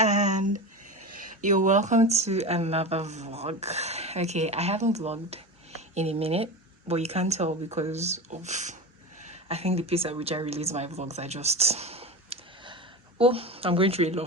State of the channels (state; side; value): normal; both; correlation 0.26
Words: you're welcome to another vlog. Okay, I haven't vlogged in a minute, but you can't tell because of I think the pace at which I release my vlogs are just I'm going through a